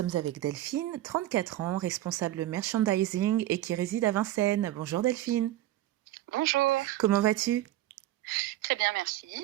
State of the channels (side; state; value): left; quieter; 14.6 dB